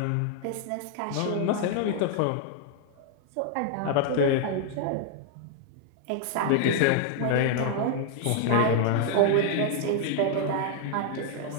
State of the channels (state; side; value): different; both; correlation 0.00